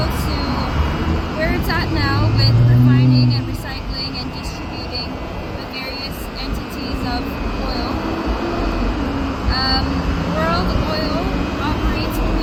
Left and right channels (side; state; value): both; identical; correlation 1.00